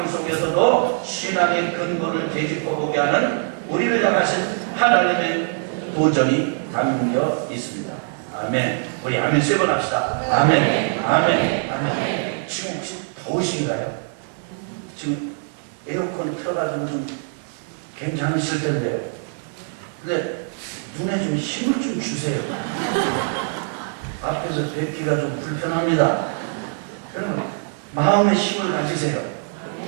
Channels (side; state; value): left; silent; 64 dB below the other